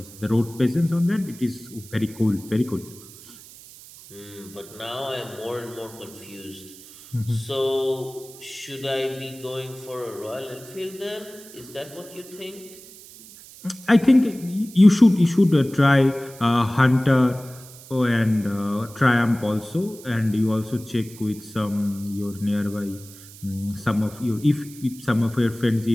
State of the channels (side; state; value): right; noise; hiss, 19 dB below the sound